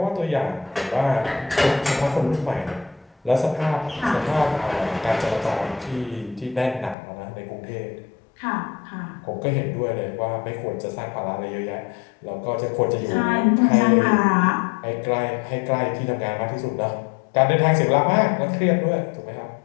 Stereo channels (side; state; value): right; drops out; at 7.0 s